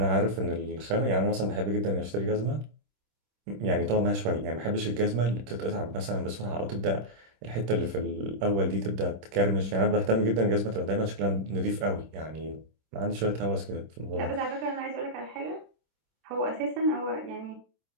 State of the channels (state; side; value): late; left; 26 ms